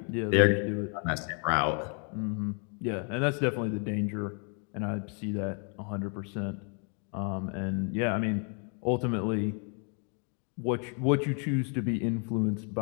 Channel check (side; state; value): right; quieter; 39.8 dB